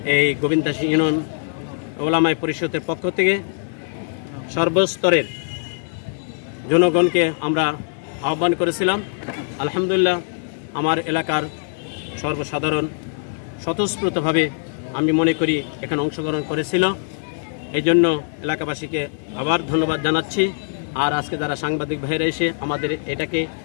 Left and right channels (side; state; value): right; silent; 56 dB below the other